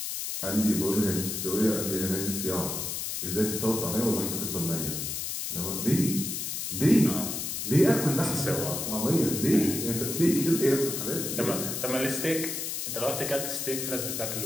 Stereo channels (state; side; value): noise; left; hiss, 3 dB below the sound